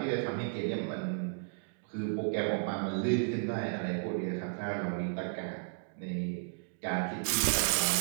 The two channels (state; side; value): silent; left; digital silence